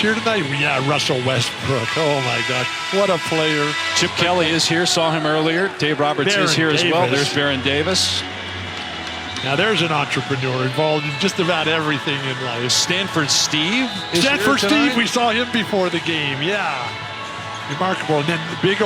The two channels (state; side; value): identical; both; correlation 1.00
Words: tonight? Yeah, Russell Westbrook. Oh, my God. What a player. Chip Kelly is here. Saw him earlier. Dave Roberts is here as well. There's Baron Davis. Now, there's an entrepreneur involved in just about everything in life. Stanford Steve is Stanford here tonight. Steve, we saw him before the game. Yeah. Remarkable. And then the Big